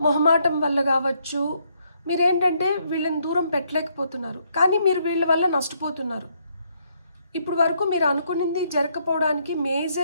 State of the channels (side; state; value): both; inverted; correlation -0.73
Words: మొహమాటం వల్ల కావచ్చు, మీరేంటంటే వీళ్ళని దూరం పెట్టలేకపోతున్నారు, కానీ మీరు వీళ్ళ వల్ల నష్టపోతున్నారు. ఇప్పుడు వరకు మీరు అనుకున్నది జరగకపోవడానికి